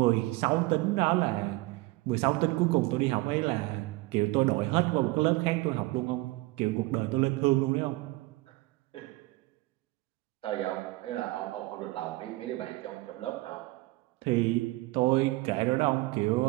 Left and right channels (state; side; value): quieter; left; 21.0 dB